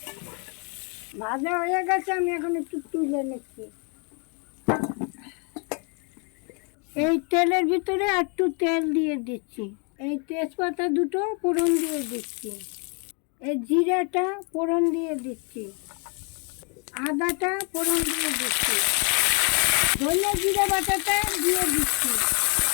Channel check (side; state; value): right; quieter; 36.2 dB